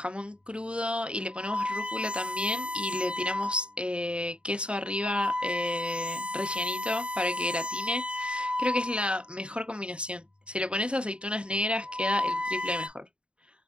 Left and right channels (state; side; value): late; left; 0.055 ms